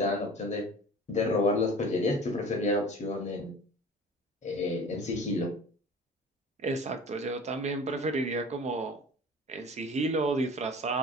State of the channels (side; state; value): both; normal; correlation 0.41